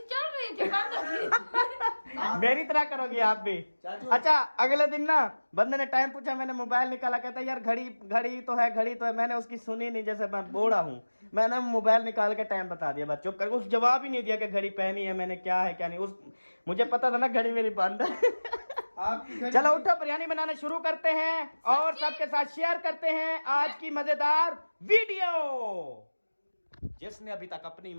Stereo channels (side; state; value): both; inverted; correlation -1.00